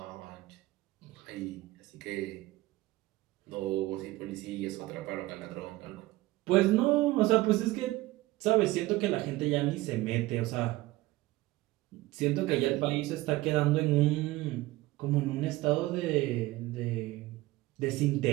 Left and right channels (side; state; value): left; quieter; 18.5 dB